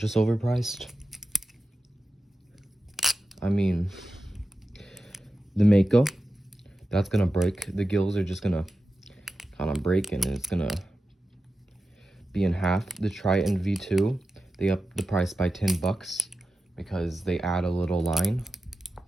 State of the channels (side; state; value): both; normal; correlation 0.92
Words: overpriced. I mean, the Mako, that's gonna break. The gills are just gonna kind of break and it's gonna be in half. The Triton V2, they upped the price by 10 bucks because they add a little line.